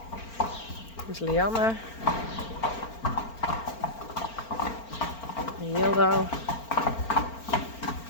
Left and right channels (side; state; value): right; late; 4.4 ms